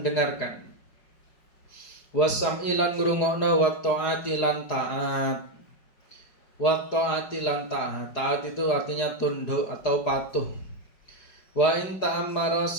Wasam'i lan ngrungokno wa taati lan taat. Wa ta'ati lan ta'at. Ta'at itu artinya tunduk atau patuh. Wa in ta'ammara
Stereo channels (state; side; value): late; right; 4.8 ms